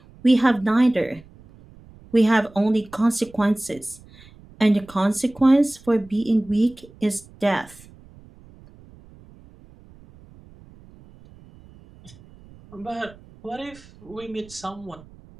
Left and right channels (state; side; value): noise; right; rumble, 24 dB below the sound